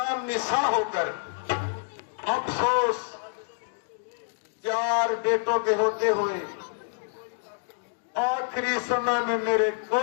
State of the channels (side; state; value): right; silent; digital silence